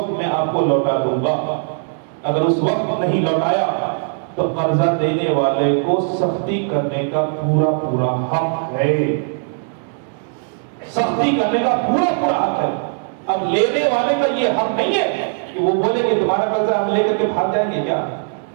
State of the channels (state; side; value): silent; left; digital silence